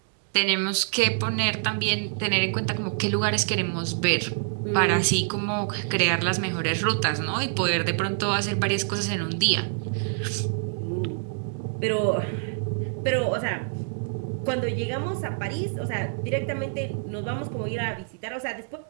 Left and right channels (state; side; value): silent; left; digital silence